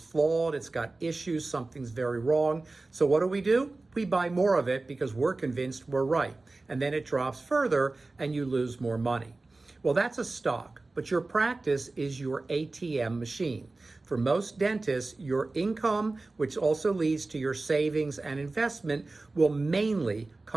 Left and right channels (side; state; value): left; quieter; 3.3 dB